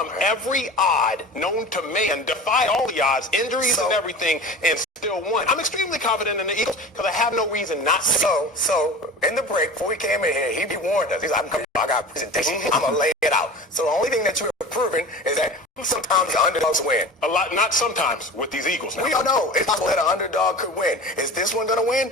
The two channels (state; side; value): normal; both; correlation 0.35